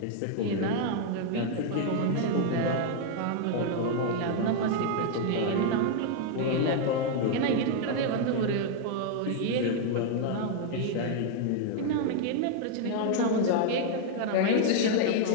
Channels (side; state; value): both; different; correlation 0.00